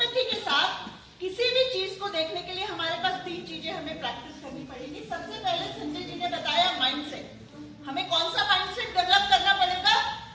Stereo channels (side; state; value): both; identical; correlation 1.00